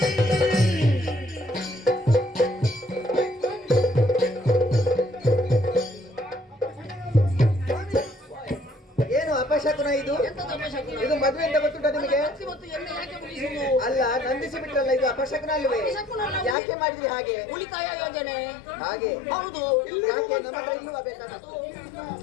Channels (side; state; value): right; drops out; at 16.6 s